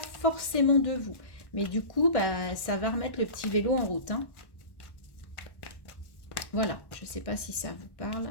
de vous. Mais du coup, ça va remettre le petit vélo en route, hein. Voilà, je ne sais pas si ça vous parle.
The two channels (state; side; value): late; right; 1.6 ms